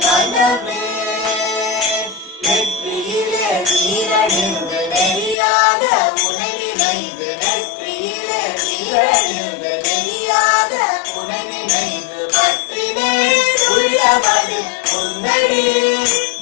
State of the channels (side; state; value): right; drops out; at 5.4 s